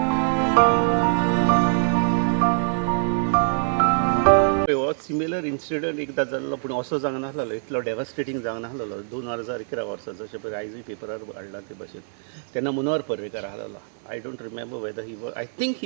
सिमिलर इन्सिडंट एकदा जाल्लो, पूण असो जावंक नासलो, इतलो डेवास्टेटींग जावंक नासलो. 2011 वर्सा जशें पळय आयजूय पेपरार हाडला ते भशेन. तेन्ना मनोहर पर्रीकार आसलो. I don't remember weather he was, I think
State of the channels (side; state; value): left; silent; 62 dB below the other